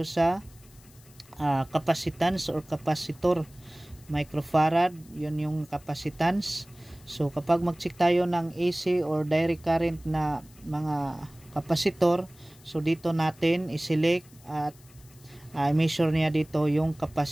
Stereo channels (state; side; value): noise; left; hiss, 26 dB below the sound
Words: sa capacitance or capacitor, microfarad, yun yung capacitance. So kapag mag-check tayo ng AC or direct current na mga kapasitor, so dito natin i-select at i-measure niya dito yung